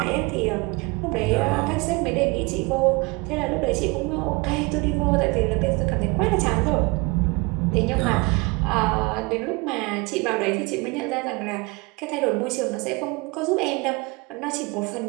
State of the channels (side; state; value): left; quieter; 26.6 dB